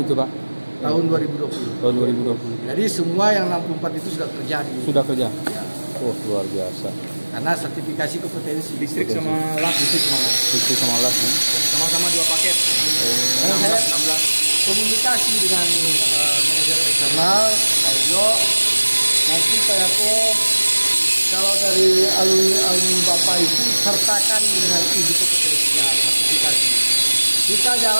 itu Pak? Tahun 2020. Tahun 2020. Jadi semua yang 64 itu sudah terjadi. Sudah kerja? Ya. Oh, luar biasa. Karena sertifikasi kompetensi. Distrik sama LAS. Distrik sama LAS nih. Sama-sama 2 paket. Karena saya 16. komunikasi dengan manajer eksternal, Pak Ujo. Nanti Pak Yako, kalau dari alumni Bapak itu sertakan dengan izin kompetensinya, sertifikasi. Kita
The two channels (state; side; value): inverted; both; correlation -1.00